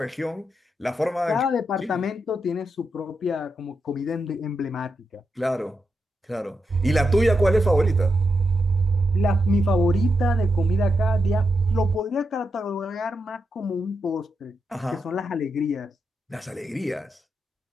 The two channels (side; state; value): both; normal; correlation 0.85